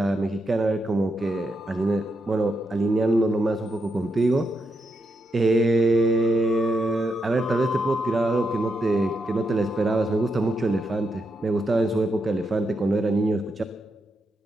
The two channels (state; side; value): normal; both; correlation 0.83